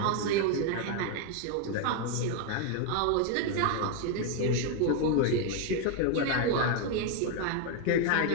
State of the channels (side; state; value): both; different; correlation 0.01